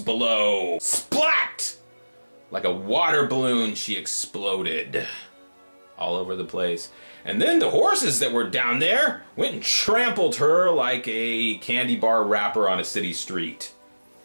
Splat! Like a water balloon, she exploded all over the place. And then the horses that were down there went and trampled her like a candy bar wrapper on a city street.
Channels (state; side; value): inverted; both; correlation -1.00